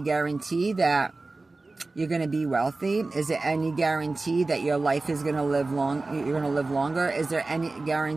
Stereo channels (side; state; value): left; quieter; 3.4 dB